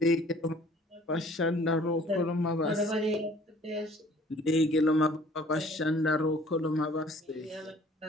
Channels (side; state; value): both; normal; correlation 0.54